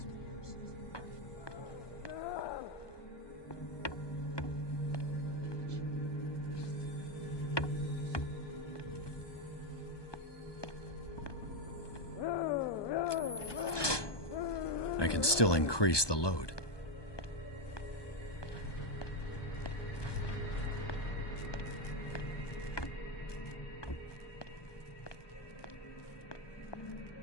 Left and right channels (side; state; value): right; late; 1.2 ms